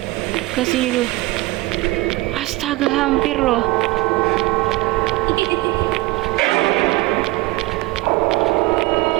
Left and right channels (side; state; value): left; quieter; 20.9 dB